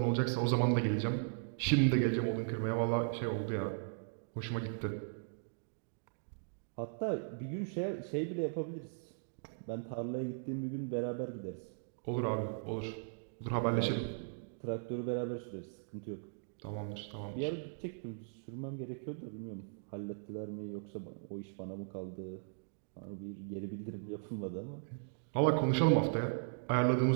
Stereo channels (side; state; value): left; silent; digital silence